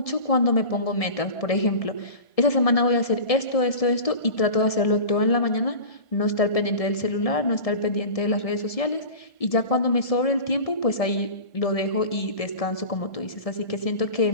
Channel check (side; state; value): right; late; 1.7 ms